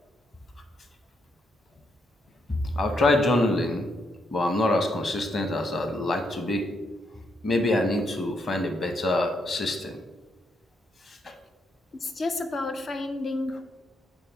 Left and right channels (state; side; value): normal; both; correlation 0.78